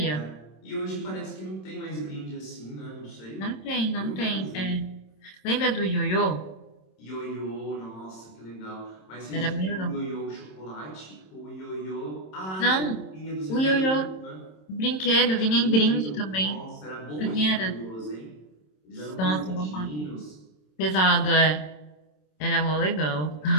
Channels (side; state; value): right; late; 27 ms